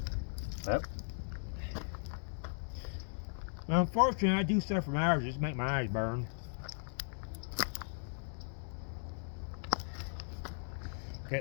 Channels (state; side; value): silent; right; digital silence